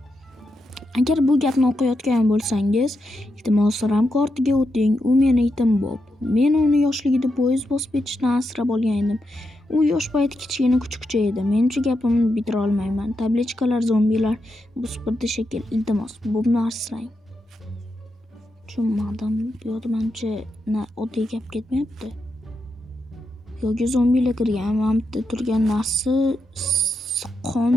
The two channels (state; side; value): normal; both; correlation 0.85